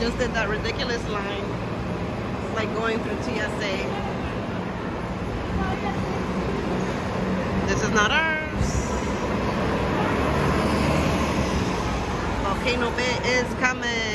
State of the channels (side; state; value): both; identical; correlation 1.00